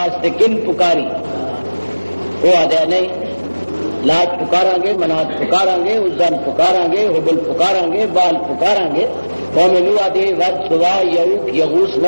کن پکاری وہ آدھا نہیں لات پکارا گے منات پکارا گے عزن پکارا گے حبل پکارا گے بال پکارا گے قوم نوح آدھے ود سوا یعوق یغوث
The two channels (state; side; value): inverted; both; correlation -1.00